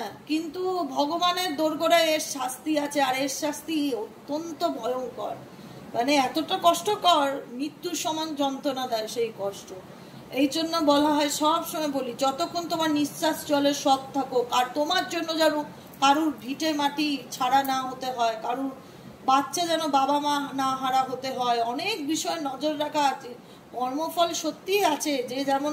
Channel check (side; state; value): both; identical; correlation 1.00